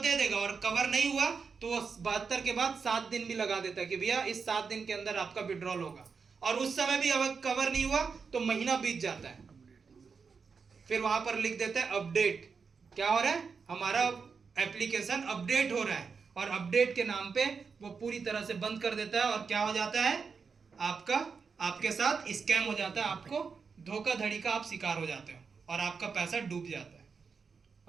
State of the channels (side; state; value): left; quieter; 5.4 dB